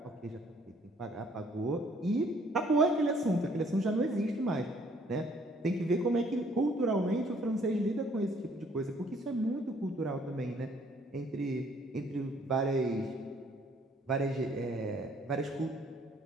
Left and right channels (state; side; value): normal; both; correlation 0.62